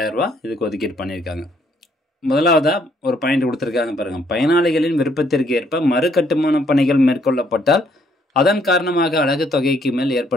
ரூபா இதுக்கு ஒதுக்கீடு பண்ணியிருக்காங்க. முதலாவதாக ஒரு பாயிண்ட் கொடுத்துருக்காங்க பாருங்கள். பயனாளிகளின் விருப்பத்திற்கு ஏற்ப மறு கட்டுமான பணிகள் மேற்கொள்ளப்பட்டால் அதன் காரணமாக அலகு தொகைக்கு மேல்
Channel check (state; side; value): normal; both; correlation 0.68